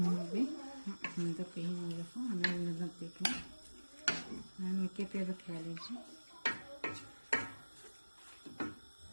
ندق هنا ويفو أنا ندقك أنا كيف يبك عليك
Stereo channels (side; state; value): both; inverted; correlation -1.00